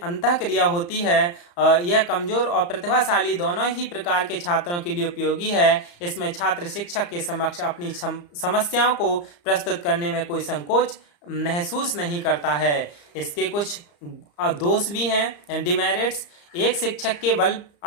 अंतःक्रिया होती है। यह कमजोर और प्रतिभाशाली दोनों ही प्रकार के छात्रों के लिए उपयोगी है। इसमें छात्र शिक्षक के समक्ष अपनी समस्याओं को प्रस्तुत करने में कोई संकोच महसूस नहीं करता है। इसके कुछ दोष भी हैं, डिमेरिट्स। एक शिक्षक के बल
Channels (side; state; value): right; late; 34 ms